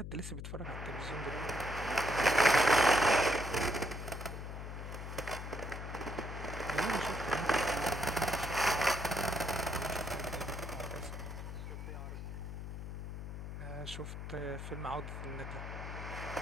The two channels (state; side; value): noise; left; hum, 7 dB below the sound